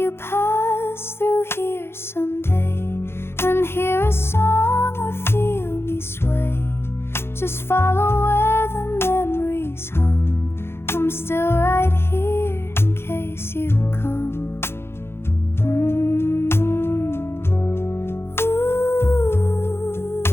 pass through here someday and hear a song or feel me sway, just follow where the memories hum. I'm still right here in case you come.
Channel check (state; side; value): late; right; 0.12 ms